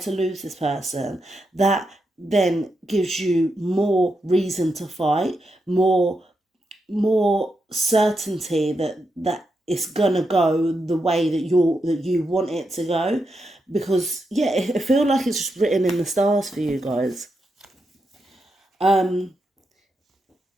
to lose this person, that then gives you more reason to fight, more certainty that it's gonna go the way that you want it to go. Because yeah, I feel like it's just written in the stars for you guys. Now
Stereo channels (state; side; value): normal; both; correlation 0.85